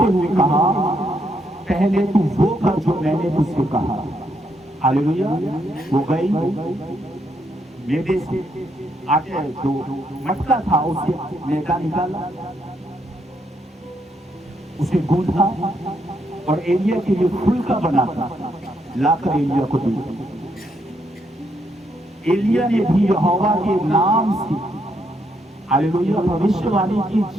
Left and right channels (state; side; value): normal; both; correlation 0.76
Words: हुए कहा पहले तू वो कर जो मैंने तुझसे कहा। हालेलुया। वो गई, मैदे से आटे जो मटका था उससे मैदा निकाला, उसे गूंथा और एलिया के लिए फुल्का बनाता लाकर एलिया को दिया। एलिया ने भी यहोवा के नाम से हालेलुया भविष्यवाणी की